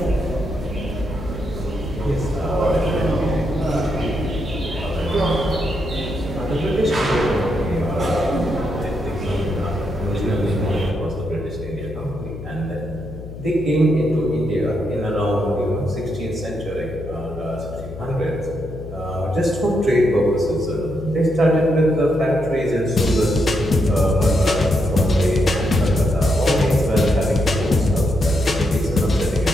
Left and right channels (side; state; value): left; noise; hum, 12 dB below the sound